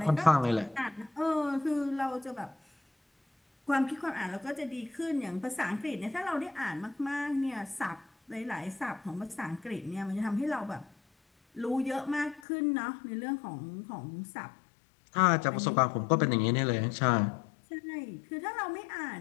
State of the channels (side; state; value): right; drops out; at 12.4 s